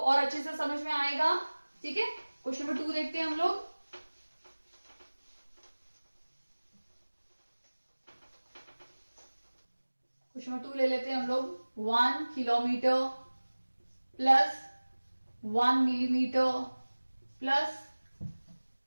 और अच्छे से समझ में आएगा। ठीक है, क्वेश्चन नंबर 2 देखते हैं हम लोग। क्वेश्चन नंबर 2 ले लेते हैं हम लोग। 1 kilometre plus 1 millimetre plus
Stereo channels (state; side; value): inverted; both; correlation -1.00